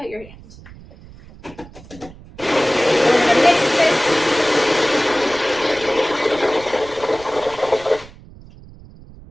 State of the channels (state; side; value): noise; right; rumble, 20 dB below the sound